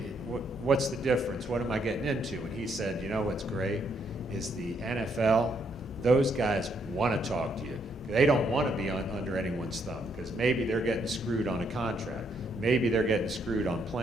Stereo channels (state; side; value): normal; both; correlation 0.73